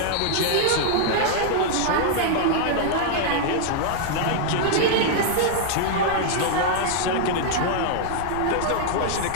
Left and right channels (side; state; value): both; different; correlation -0.01